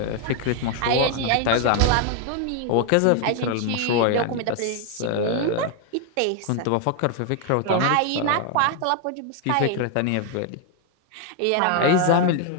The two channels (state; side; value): different; both; correlation 0.01